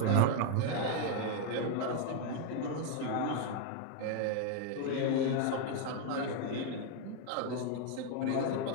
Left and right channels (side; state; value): both; different; correlation 0.01